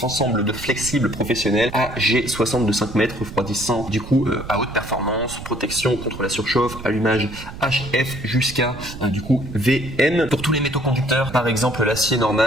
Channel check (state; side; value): noise; right; rumble, 12 dB below the sound